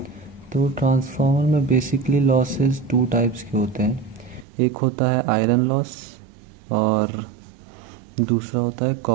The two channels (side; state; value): left; drops out; at 4.5 s